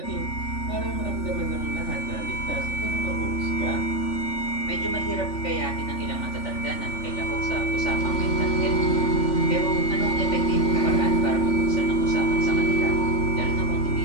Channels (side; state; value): right; late; 3.4 ms